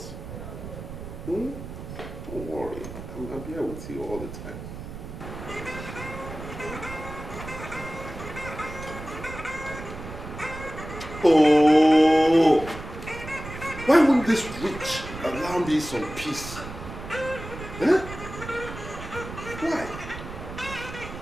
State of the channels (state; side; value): noise; right; rumble, 11 dB below the sound